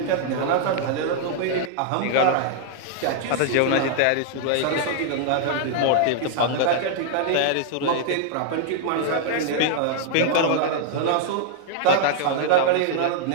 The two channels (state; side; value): different; both; correlation -0.01